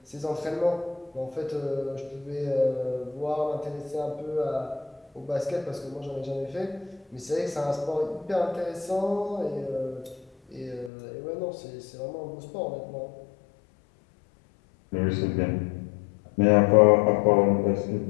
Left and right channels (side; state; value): right; drops out; at 10.9 s